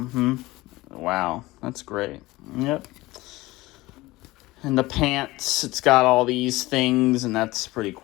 Wow, that's great. Yep. And the pants, it's got all these things, and that's pretty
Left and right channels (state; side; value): quieter; right; 19.6 dB